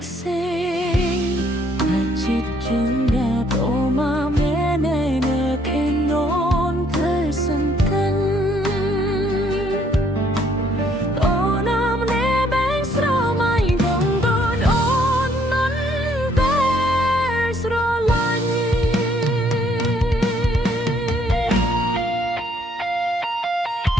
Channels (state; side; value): normal; both; correlation 0.66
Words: ខ្សេងតែចិត្តចឹងដែរអូមកមាននៅគេននធ្វើសង្កិន